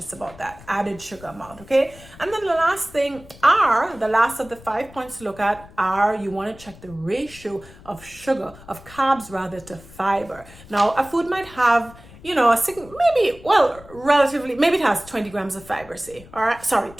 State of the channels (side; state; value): left; noise; rumble, 20 dB below the sound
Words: about that added sugar amount. Okay, and then the last thing are the last of the 5 points to look at are you want to check the ratio of sugar, of carbs rather, to fiber. Now a food might have relatively, maybe it has 20 grams of fiber, say, all right,